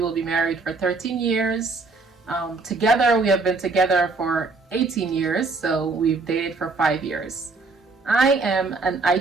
be married for 13 years. Together, we have been together for 18 years, so we've dated for 5 years. I am an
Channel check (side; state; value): left; quieter; 3.8 dB